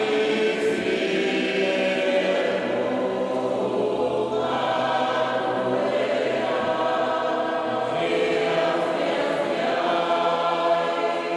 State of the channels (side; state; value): both; identical; correlation 1.00